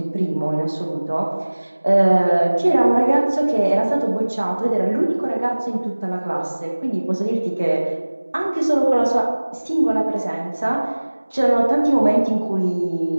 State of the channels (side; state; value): both; inverted; correlation -1.00